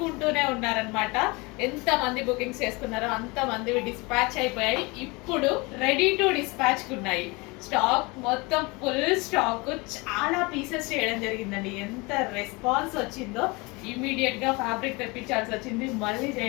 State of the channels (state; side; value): quieter; right; 26.1 dB